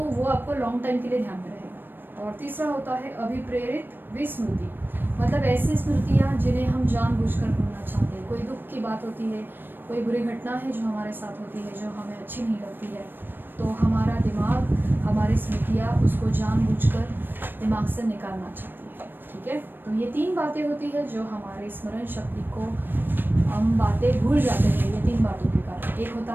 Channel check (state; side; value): late; left; 0.095 ms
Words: वो आपको लॉन्ग टाइम के लिए ध्यान में रहेगा। और तीसरा होता है अभिप्रेरित विस्मृति, मतलब ऐसी स्मृतियाँ जिन्हें हम जानबूझकर भूलना चाहते हैं। कोई दुख की बात होती है, कोई बुरी घटना है जो हमारे साथ होती है, जो हमें अच्छी नहीं लगती है, तो हमारा दिमाग, हमारी स्मृतियाँ उसको जानबूझकर दिमाग से निकालना चाहती है। ठीक है, तो ये 3 बातें होती है जो हमारे स्मरण शक्ति को, हम बातें भूल जाते हैं ये 3 बातों के कारण। एक होता